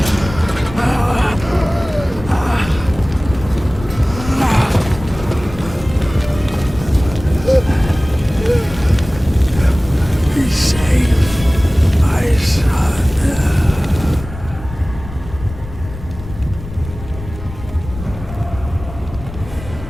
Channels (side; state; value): left; noise; rumble, 12 dB below the sound